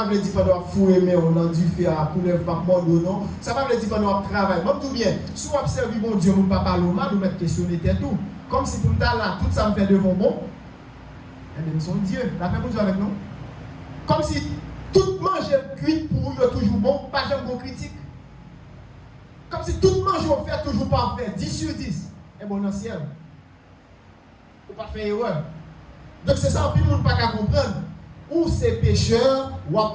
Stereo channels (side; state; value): both; identical; correlation 1.00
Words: veut dire pendant fouer mais on a dû faire pour ne pas mordre non. Ça va veut dire pendant travail. Même tout bien. Si on observe bon Dieu, mon papa Loma nous mettre questionner tout. Comme si pour nous là tout ça me fait devant bon. Eh bien, nous sommes Dieu. La paix pour Dieu avec nous. Comme si tout manger cuit pour eux est toujours bon, pas jamais bon critique. Comme si tout manger on fait toujours parfait, 10 sur 10. Et bon, dans le ciel. Ou pas faire erreur. Donc c'est ça, puis le monde pas qu'à comprendre. Ou c'est pécheur, ou à